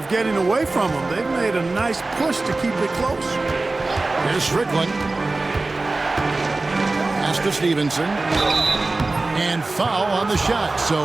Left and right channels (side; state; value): left; quieter; 3.3 dB